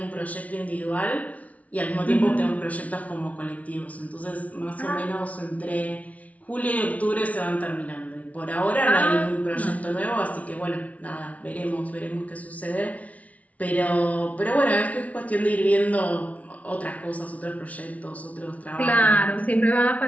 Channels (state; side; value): late; right; 0.068 ms